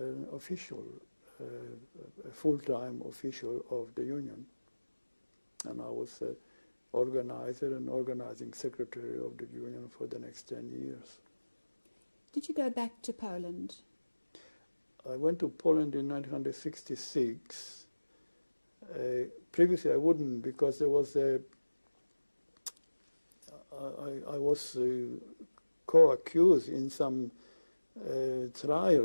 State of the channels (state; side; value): inverted; both; correlation -1.00